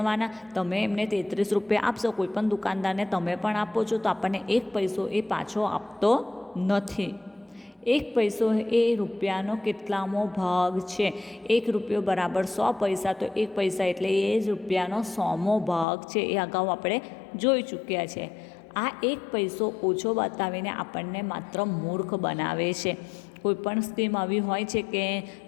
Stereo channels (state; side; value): drops out; right; at 15.9 s